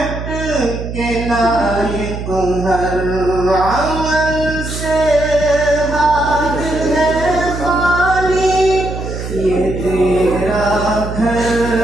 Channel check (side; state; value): right; noise; hum, 7 dB below the sound